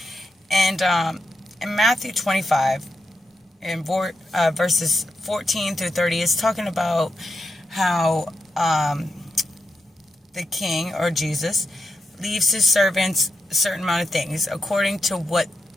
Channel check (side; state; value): both; normal; correlation 0.84